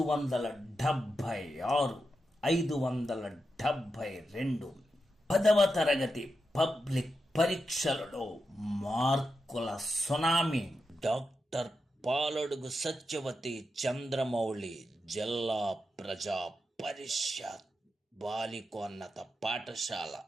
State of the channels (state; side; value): normal; both; correlation 0.88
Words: 572 10వ తరగతి పబ్లిక్ పరీక్షలలో మార్కుల సునామీ. డాక్టర్ పాలడుగు సత్యవతి చంద్రమౌళి జిల్లా ప్రజా పరిషత్ బాలికోన్నత పాఠశాల